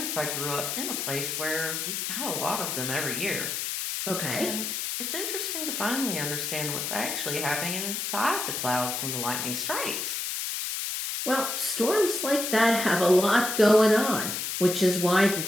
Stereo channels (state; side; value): noise; left; hiss, 3 dB below the sound